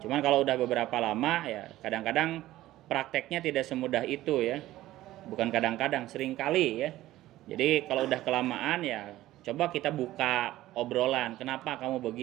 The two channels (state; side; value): quieter; left; 15.5 dB